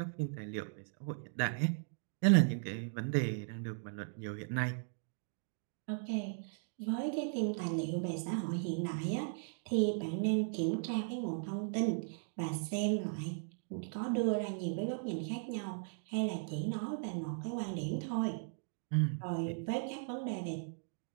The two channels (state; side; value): silent; left; digital silence